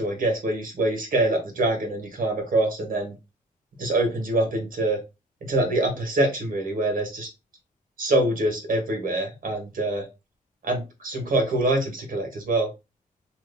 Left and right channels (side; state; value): both; normal; correlation 0.42